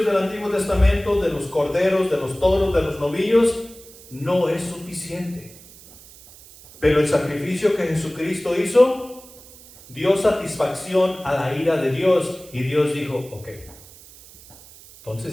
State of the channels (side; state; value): right; noise; hiss, 21 dB below the sound